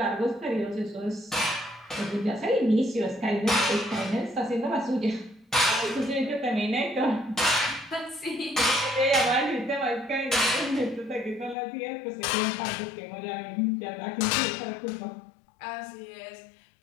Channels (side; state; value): right; drops out; at 11.6 s